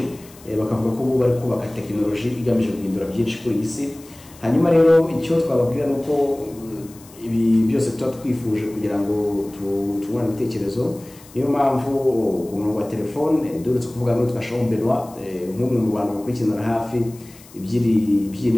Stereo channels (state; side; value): noise; left; hiss, 23 dB below the sound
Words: bakavuga ko bari kubaka tekinoloji igamije guhindura byinshi kuri isi. Hanyuma rero icyo twababwira nuko ibi byose tuba twifuje kugira ngo tubone ibitekerezo. Niyo mpamvu ku murongo wa telefone duretse kuvuga ngo twashaho Benoit nk'umwe mu bantu bakurikirana hafi iby'i